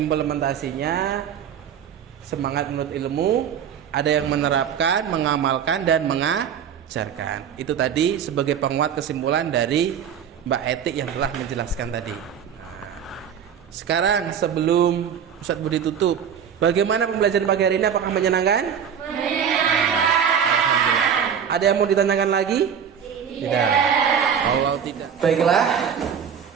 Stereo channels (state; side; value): quieter; left; 8.0 dB